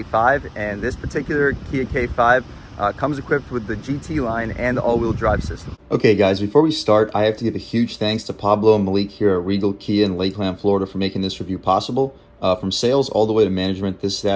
And this particular Kia K5 comes equipped with the GT line and the all-wheel drive system. Okay guys, before we start, I have to give a huge thanks to Pablo and Malik here at Regal Kia in Lakeland, Florida for making this review possible. From sales all the way to management, this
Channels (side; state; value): both; identical; correlation 1.00